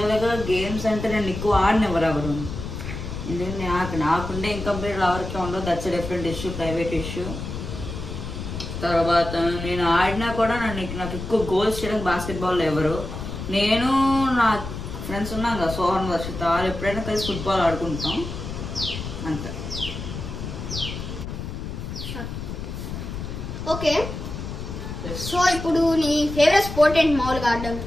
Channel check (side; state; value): left; noise; rumble, 7 dB below the sound